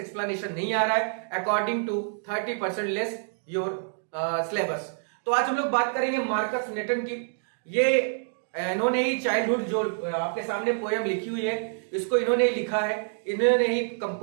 नहीं आ रहा है according to 30% less your syllabus. तो आज हम लोग बात करेंगे मार्कस नेटन की। ये इन्होंने ही चाइल्डहुड जो आपके सामने पोयम लिखी हुई है, इसको इन्होंने ही लिखा है, इन्होंने ही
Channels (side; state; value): left; silent; digital silence